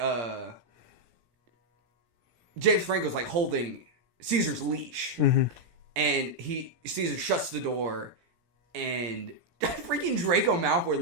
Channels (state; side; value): late; left; 17 ms